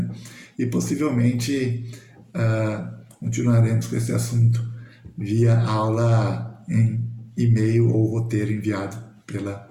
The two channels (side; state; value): both; identical; correlation 1.00